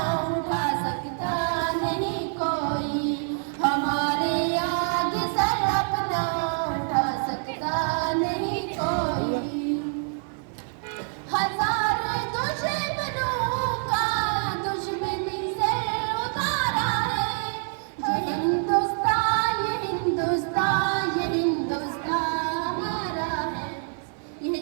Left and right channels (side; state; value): left; silent; 57 dB below the other